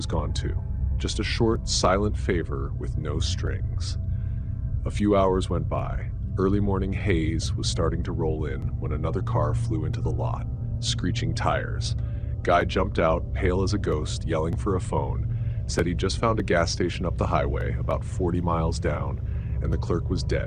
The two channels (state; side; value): identical; both; correlation 1.00